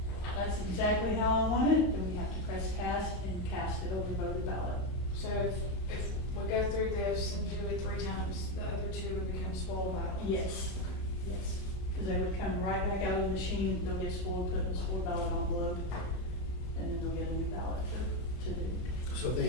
that's exactly how I want it, then we have to press cast and cast the overvoted ballot. So if we go through this and do it 3 times, the other 2 would become spoiled ballots? Yes, yes. Because they would come right back out of the machine, they'll get spoiled, put in the spoiled ballot envelope, and then they'll get a new ballot to do. So if they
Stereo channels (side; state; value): right; late; 32 ms